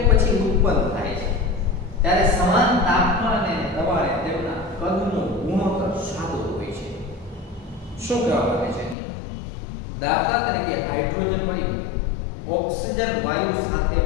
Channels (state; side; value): drops out; right; at 9.0 s